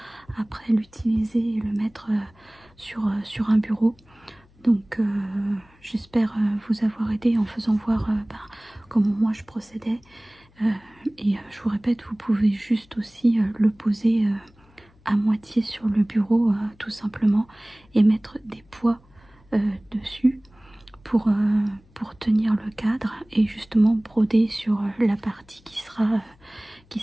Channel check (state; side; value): noise; left; hum, 30 dB below the sound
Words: après l'utiliser et le mettre sur un bureau. Donc j'espère vous avoir aidé en faisant voir comment moi je procédais. Et je vous répète, vous pouvez juste aussi le poser à moitié sur le bureau tout simplement et mettre des poids dessus pour tenir le cadre et justement broder sur la partie qui